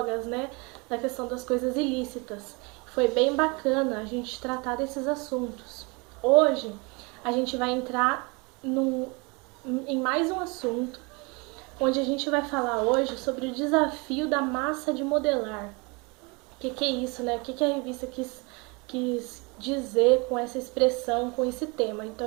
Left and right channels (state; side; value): quieter; left; 29.0 dB